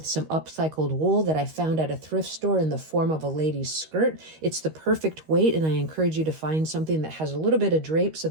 some upcycled wool that I found at a thrift store in the form of a lady's skirt. It's the perfect weight, and I encourage you to find something that has a little bit of drape so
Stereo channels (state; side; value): late; left; 13 ms